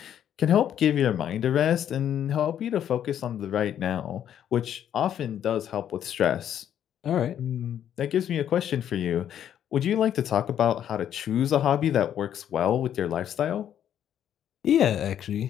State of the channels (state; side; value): quieter; right; 10.0 dB